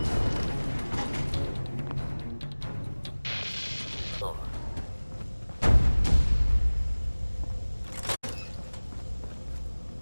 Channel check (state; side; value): inverted; both; correlation -1.00